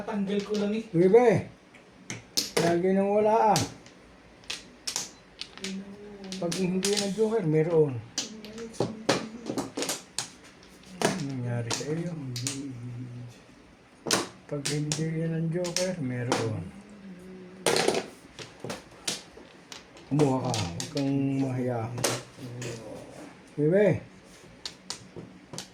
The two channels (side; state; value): both; identical; correlation 1.00